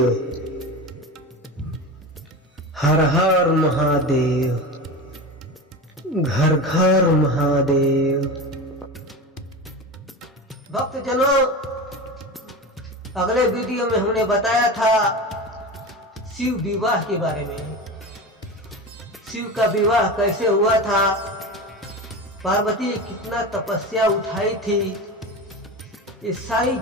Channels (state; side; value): normal; both; correlation 0.27